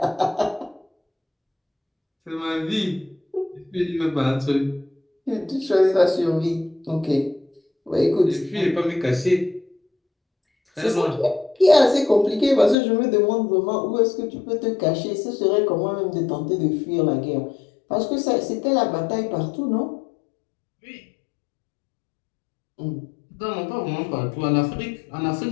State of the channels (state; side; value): drops out; right; at 12.8 s